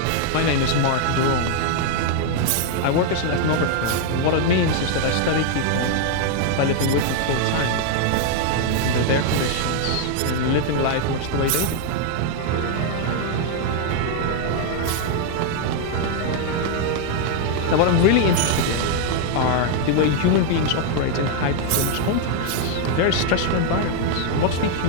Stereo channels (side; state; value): both; different; correlation 0.00